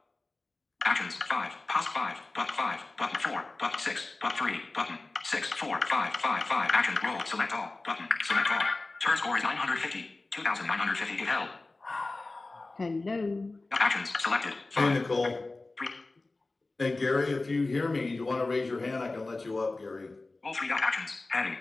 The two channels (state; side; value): quieter; right; 3.2 dB